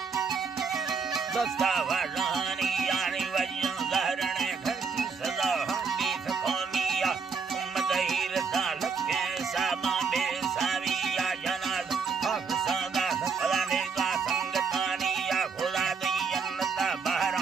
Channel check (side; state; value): left; quieter; 5.5 dB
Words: दस्ता वालानिया नि वजन गहरने घर की सदा हंदी सकोमिया उम्मत हीर सालक के सामा बेसाविया जनाद हक सदा सफलाने का संगतानिया खुदा दी जन्नता